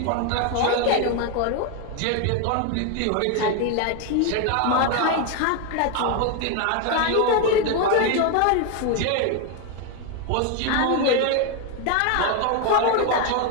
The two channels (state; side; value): different; both; correlation 0.01